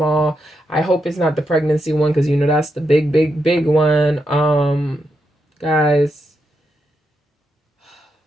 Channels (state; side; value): normal; both; correlation 0.84